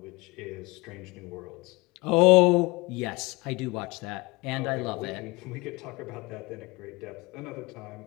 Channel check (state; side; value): quieter; right; 24.1 dB